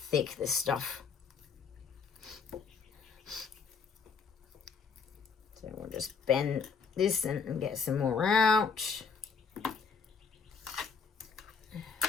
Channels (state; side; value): quieter; right; 5.6 dB